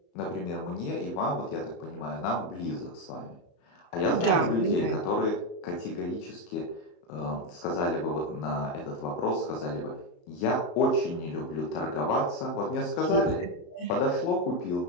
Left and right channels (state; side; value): late; right; 34 ms